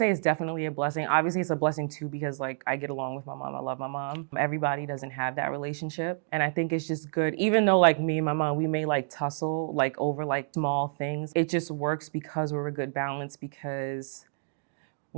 it's definitely a blessing. Obviously, it's a blessing too because like I get along with my mom. I love my mom. Everybody doesn't have that relationship. And I think it's just good. Even though like me and my mom, we may like tussle like over like small things. It just works because we're a good balance, because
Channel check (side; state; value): left; silent; digital silence